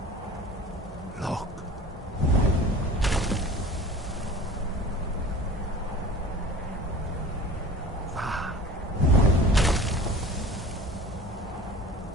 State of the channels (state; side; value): normal; both; correlation 0.42